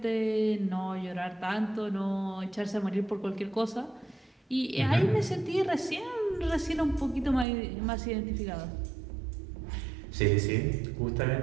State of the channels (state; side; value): drops out; left; at 7.5 s